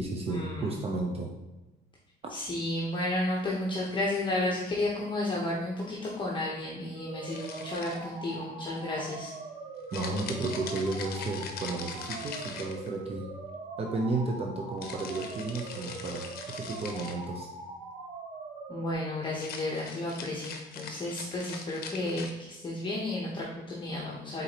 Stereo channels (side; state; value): both; normal; correlation 0.53